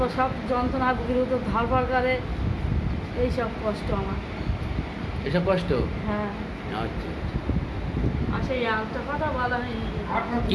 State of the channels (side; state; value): both; identical; correlation 1.00